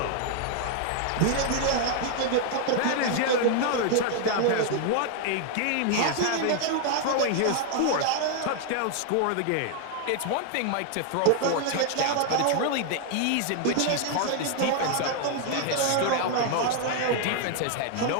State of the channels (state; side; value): different; both; correlation 0.00